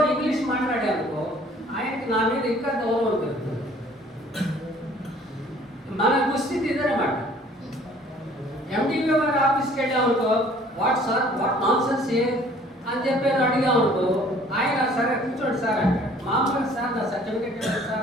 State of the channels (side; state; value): both; normal; correlation 0.55